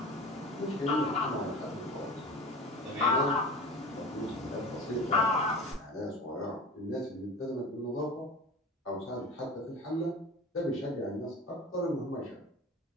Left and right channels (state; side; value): normal; both; correlation 0.35